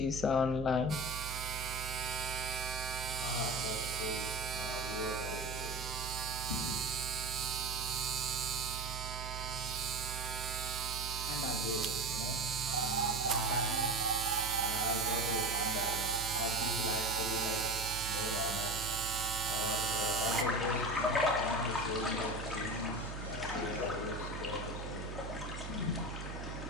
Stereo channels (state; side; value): noise; right; hum, 7 dB below the sound